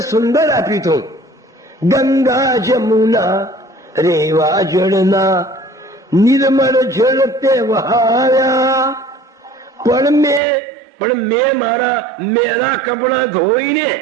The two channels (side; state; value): left; drops out; at 10.4 s